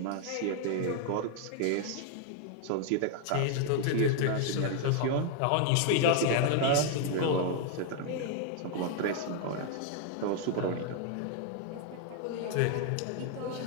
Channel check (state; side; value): different; both; correlation 0.00